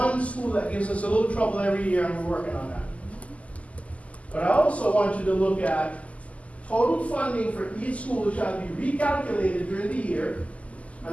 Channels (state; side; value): late; right; 0.068 ms